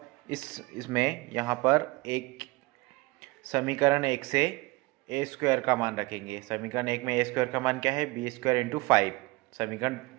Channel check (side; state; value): left; quieter; 23.3 dB